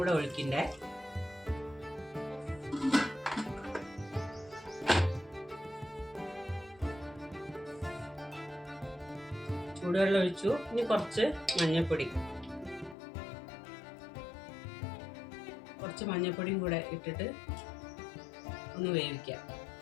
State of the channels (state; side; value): drops out; right; at 13.0 s